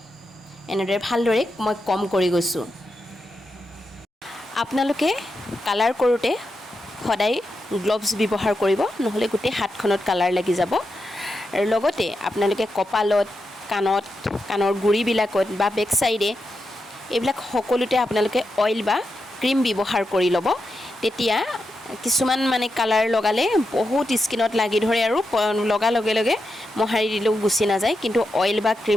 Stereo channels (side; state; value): both; normal; correlation 0.87